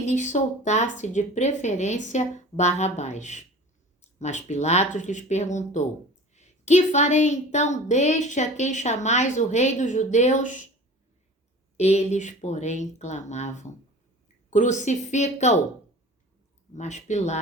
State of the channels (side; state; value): both; normal; correlation 0.40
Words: lhes soltasse de preferência Barrabás. Mas Pilatos lhes perguntou: Que farei então deste a quem chamais o rei dos judeus? Eles, porém, clamavam: Crucifica-o! Mas